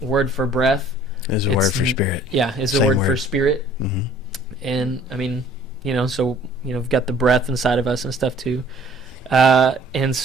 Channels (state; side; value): normal; both; correlation 0.54